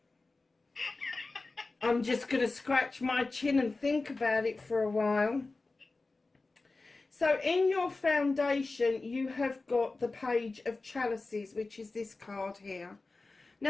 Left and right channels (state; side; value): quieter; right; 3.5 dB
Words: I'm just going to scratch my chin and think about it for a while. So in your foundation, you have got the Page of Chalices, which is this card here.